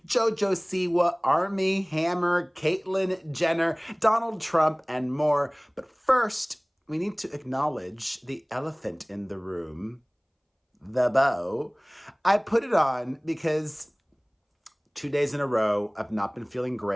JoJo Siwa, Armie, Hammer, Caitlyn Jenner, Donald Trump, and more. But first, we need to acknowledge the elephant in the room. The bow. I put it on because 2 days in a row, I've not been feeling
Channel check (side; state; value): both; identical; correlation 1.00